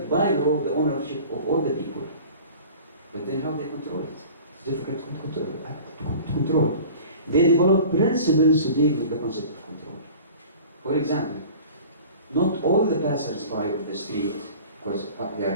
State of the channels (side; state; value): both; inverted; correlation -0.43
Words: by law the ownership of all the people. But then how they control it? It's difficult to control. They develop principles to deal with the concept of control. For example, not all the passers-by of the street, because they